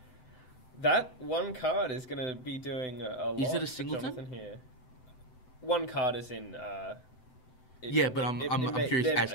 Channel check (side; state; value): right; late; 7.9 ms